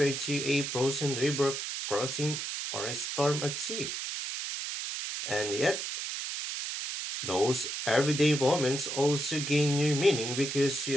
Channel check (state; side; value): noise; right; hiss, 4 dB below the sound